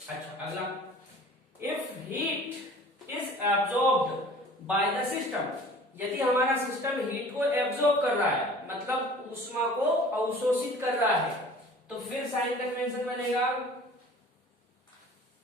अच्छा, अगला, if heat is absorbed by the system, यदि हमारा सिस्टम हीट को एब्जॉर्ब कर रहा है, मतलब ऊष्मा को अवशोषित कर रहा है, तो फिर साइन कन्वेंशन बनेगा,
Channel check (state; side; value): normal; both; correlation 0.46